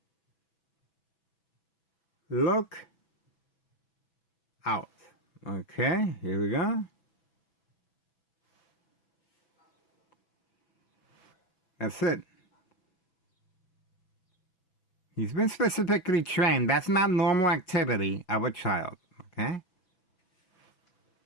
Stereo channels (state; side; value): late; right; 6.0 ms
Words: Look out. Okay, here we go. That's it. He's been specifically trained. That's not normal activity of a child. Okay?